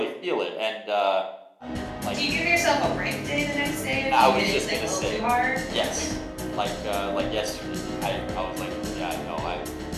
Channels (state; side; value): identical; both; correlation 1.00